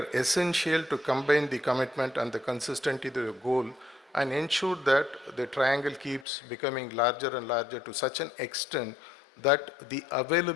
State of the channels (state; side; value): drops out; right; at 6.2 s